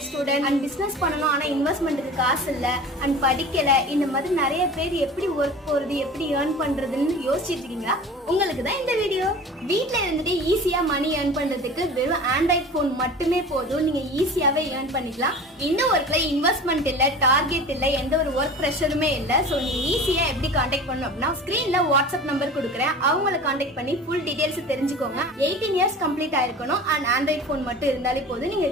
student and business பண்ணணும், ஆனா இன்வெஸ்ட்மெண்ட்டுக்கு காசு இல்ல அண்ட் படிக்கல, இந்த மாதிரி நிறைய பேர் எப்படி ஒர்க் போறது, எப்படி ஏர்ன் பண்றதுன்னு யோசிச்சுட்டு இருக்கீங்களா? உங்களுக்கு தான் இந்த வீடியோ. வீட்ல இருந்துட்டு ஈஸியா மணி ஏர்ன் பண்றதுக்கு வெறும் ஆண்ட்ராய்ட் போன் மட்டுமே போதும். நீங்க ஈஸியாவே ஏர்ன் பண்ணிக்கலாம். இந்த ஒர்க்ல இன்வெஸ்ட்மெண்ட் இல்ல, டார்கெட் இல்ல, எந்த ஒரு ஒர்க் ப்ரெஷருமே இல்ல. சோ நீங்க ஈஸியா எப்படி கான்டாக்ட் பண்ணணும் அப்படின்னா, ஸ்கிரீன்ல வாட்ஸ்அப் நம்பர் கொடுக்குறேன், அவங்களை கான்டாக்ட் பண்ணி ஃபுல் டீடைல்ஸ் தெரிஞ்சுக்கோங்க. 18 இயர்ஸ் கம்ப்ளீட் ஆயிருக்கணும் அண்ட் ஆண்ட்ராய்ட் போன் மட்டும் இருந்தாலே போதும். நீங்க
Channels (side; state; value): both; normal; correlation 0.38